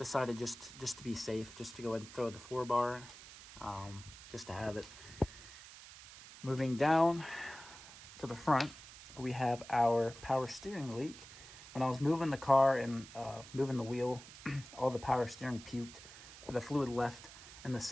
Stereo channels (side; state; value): right; noise; hiss, 16 dB below the sound